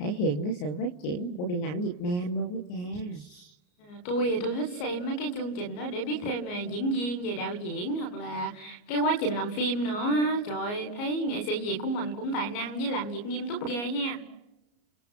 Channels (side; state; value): right; late; 34 ms